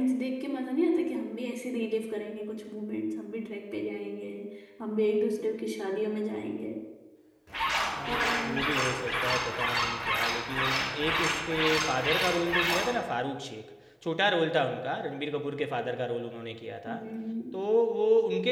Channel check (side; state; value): both; identical; correlation 1.00